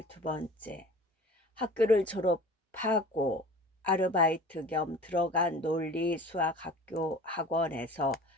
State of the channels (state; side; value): normal; both; correlation 0.42